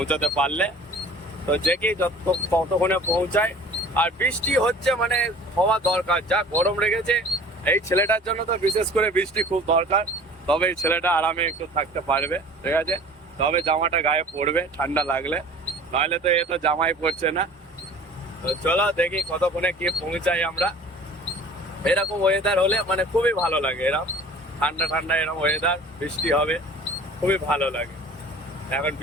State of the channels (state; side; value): normal; both; correlation 0.45